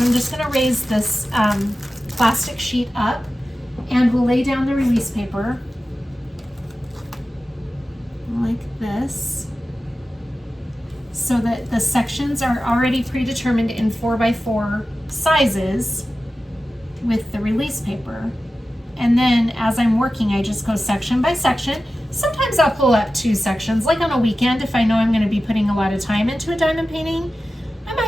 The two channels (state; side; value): normal; both; correlation 0.94